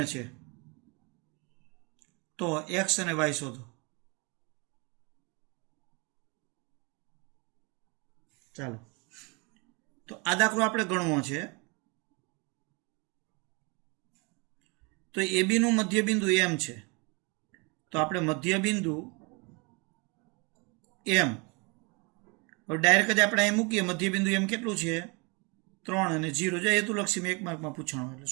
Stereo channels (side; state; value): left; quieter; 30.3 dB